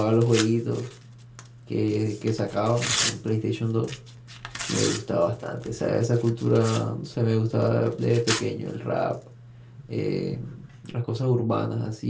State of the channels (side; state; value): both; identical; correlation 1.00